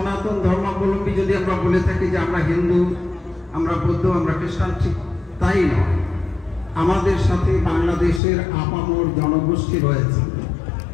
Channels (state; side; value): drops out; right; at 8.2 s